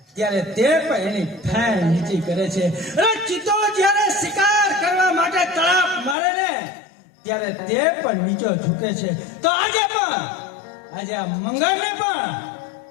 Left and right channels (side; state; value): right; drops out; at 6.2 s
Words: ત્યારે તે પણ એની ફેણ નીચી કરે છે. અને ચિત્તો જ્યારે શિકાર કરવા માટે તળાપ મારે ને ત્યારે તે પણ નીચો ઝૂકે છે. તો આજે આ મંગળને પણ